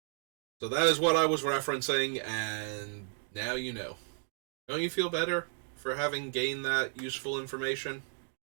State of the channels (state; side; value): silent; left; 56 dB below the other